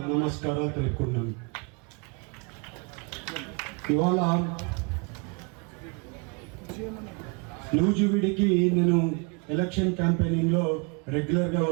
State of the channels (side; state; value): left; quieter; 32.9 dB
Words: నమస్కారాలు తెలుపుకున్నాను. ఇవాళ నూజివీడికి నేను ఎలక్షన్ క్యాంపెయినింగ్లో రెగ్యులర్గా